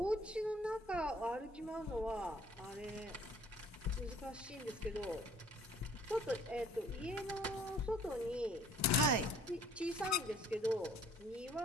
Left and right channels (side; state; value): both; normal; correlation 0.55